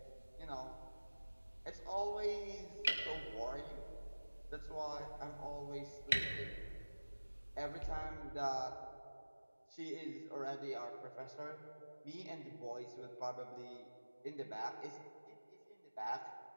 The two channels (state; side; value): inverted; both; correlation -1.00